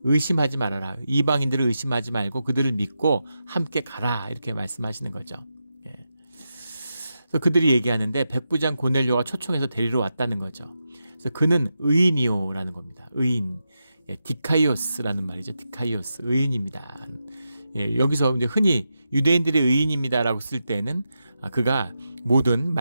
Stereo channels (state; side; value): inverted; both; correlation -0.88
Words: 의심하지 말아라. 이방인들을 의심하지 말고 그들을 믿고 함께 가라. 이렇게 말씀하시는 거죠. 그래서 그들이 얘기하는데 백부장 고넬료가 초청해서 데리러 왔다는 거죠. 그래서 그는 의인이요라는 겁니다. 의인. 디카이오스라는 말이죠. 디카이오스. 의인입니다. 여기서 이제 흔히 유대인들의 의인입니다라고 쓸 때는 그가 모든